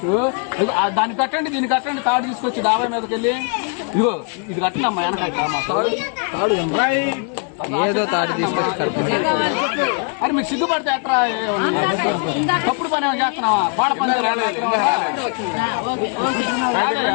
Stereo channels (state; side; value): quieter; right; 38.1 dB